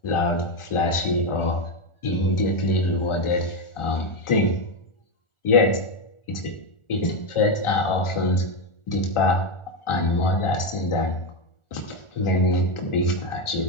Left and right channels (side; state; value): right; late; 1.4 ms